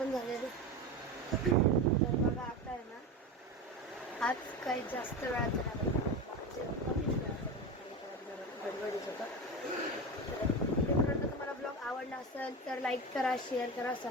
झालेलं आहे. तर बघा आता आहे ना आज काही जास्त वेळाचं नाही, कमीच गडबडीच होतं. तर तुम्हाला ब्लॉग आवडला असेल तर लाईक करा, शेअर करा,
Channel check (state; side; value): normal; both; correlation 0.23